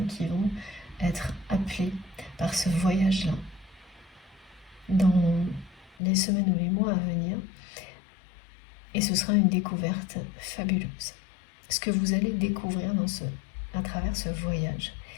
qui vont être appelées par ce voyage-là dans les semaines ou les mois à venir. Et ce sera une découverte fabuleuse. Ce que vous allez découvrir à travers ce voyage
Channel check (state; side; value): drops out; right; at 6.0 s